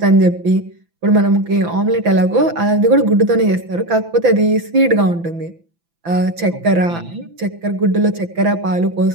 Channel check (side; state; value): left; late; 6.0 ms